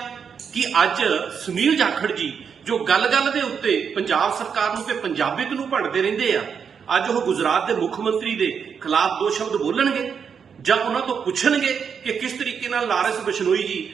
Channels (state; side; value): quieter; left; 6.8 dB